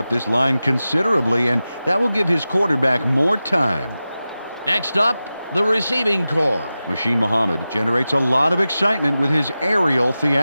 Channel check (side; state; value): both; inverted; correlation -0.94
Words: this line considerably, and that will give his quarterback more time. Next up, the receiving corps. Machine Muhammad generates a lot of excitement with his aerial